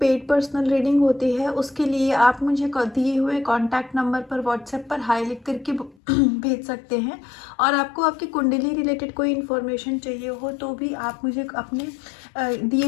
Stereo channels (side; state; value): right; drops out; at 6.0 s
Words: पेड पर्सनल रीडिंग होती है। उसके लिए आप मुझे दिए हुए कॉन्टैक्ट नंबर पर व्हाट्सएप पर हाई लिख करके भेज सकते हैं। और आपको आपकी कुंडली रिलेटेड कोई इन्फॉर्मेशन चाहिए हो तो भी आप मुझे अपने